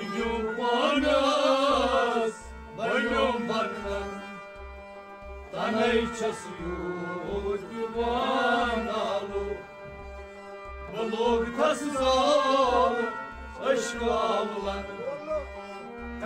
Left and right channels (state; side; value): identical; both; correlation 1.00